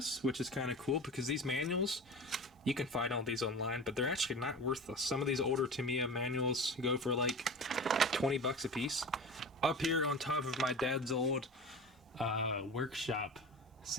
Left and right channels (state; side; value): normal; both; correlation 0.33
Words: which is kind of cool because these manuals, you can find all these online, but they're actually not worthless. Some of these older Tamiya manuals go for like 20 bucks a piece. Up here on top of my dad's old workshop